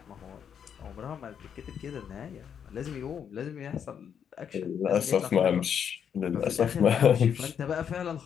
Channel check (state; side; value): quieter; right; 8.0 dB